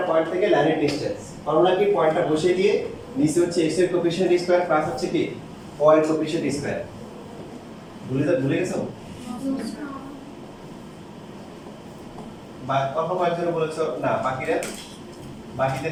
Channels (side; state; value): both; identical; correlation 1.00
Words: পয়েন্ট থেকে লাইনের ডিসটেন্স ফর্মুলা কি, পয়েন্টটা বসিয়ে দিয়ে নিচে হচ্ছে x এর কোএফিশিয়েন্ট স্কয়ার প্লাস হচ্ছে কি y এর কোএফিশিয়েন্ট স্কয়ার। ভুলে গেছো? বা অল্প কয়েকজন বলেছো না,